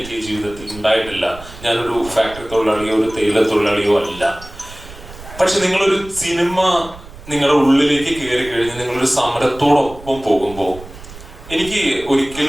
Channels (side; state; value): right; noise; rumble, 17 dB below the sound